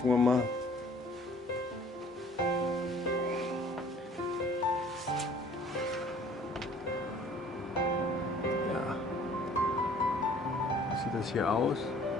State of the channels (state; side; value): normal; both; correlation 0.54